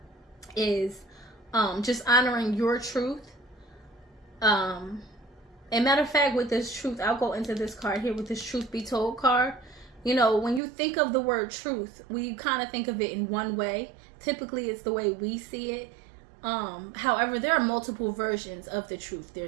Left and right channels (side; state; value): left; drops out; at 10.6 s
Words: is just honoring your truth. And matter of fact, with this truth, I'll go into this card here with this truth be told card. You know, when you think of the word truth, we kind of think of it in one way. Typically, it's the way we see it. However, there are multiple versions of the truth.